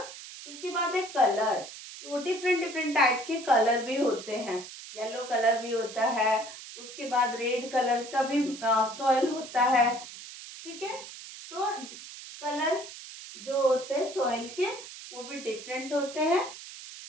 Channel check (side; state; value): right; noise; hiss, 13 dB below the sound